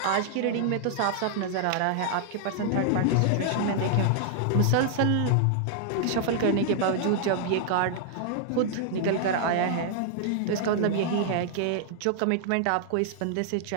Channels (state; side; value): different; both; correlation 0.00